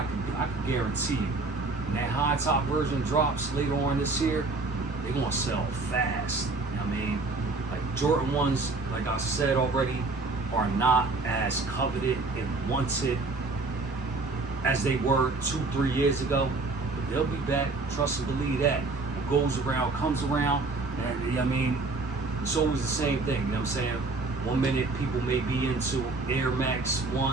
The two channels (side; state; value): left; quieter; 3.5 dB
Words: could guarantee you, when that high top version drops later on this year, they're gonna sell fast. You know what I mean? Like Jordan 1s, like I said already, are not as coveted and wanted as they were 2-3 years ago. But they'll be back, trust and believe that. What goes around comes around. And you know what I mean, it's always the same thing, you know what I'm saying? 1 minute people may be into Air Max